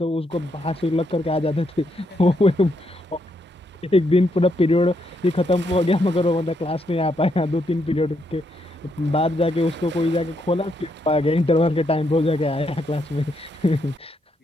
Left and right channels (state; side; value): normal; both; correlation 0.77